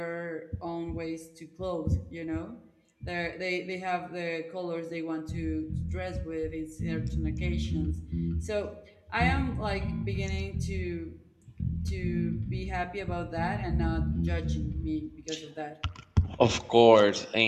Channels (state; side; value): identical; both; correlation 1.00